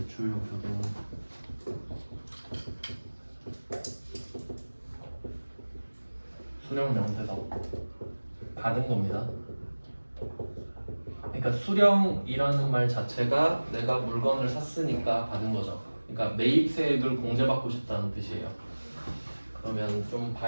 등 수령명세서 받은 겁니다. 그러니까 수령이라는 말 자체가 내가 물건을 샀으니까 받은 거죠. 그러니까 매입세액을 공제받고 싶다는 뜻이에요. 그러면 좀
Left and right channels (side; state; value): both; inverted; correlation -1.00